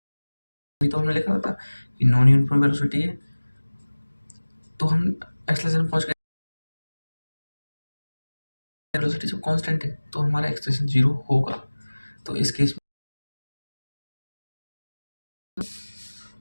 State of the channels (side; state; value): both; inverted; correlation -1.00